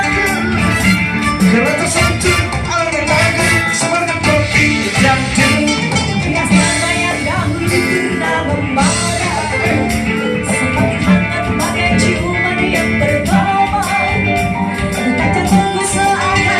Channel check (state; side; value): identical; both; correlation 1.00